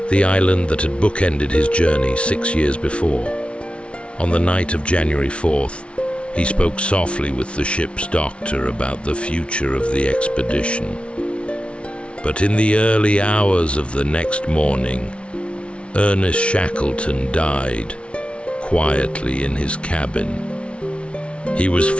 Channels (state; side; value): late; right; 0.060 ms